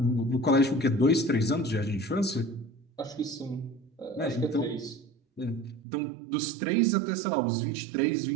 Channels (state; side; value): drops out; left; at 5.8 s